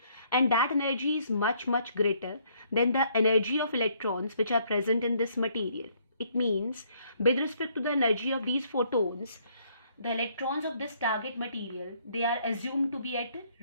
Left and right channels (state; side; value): inverted; both; correlation -0.67